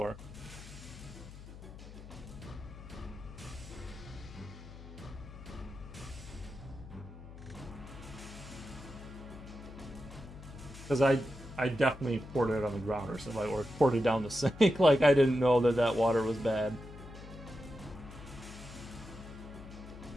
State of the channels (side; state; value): left; noise; hum, 15 dB below the sound